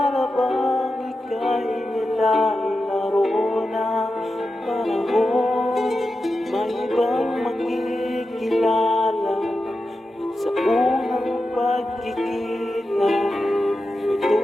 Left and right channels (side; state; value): both; normal; correlation 0.91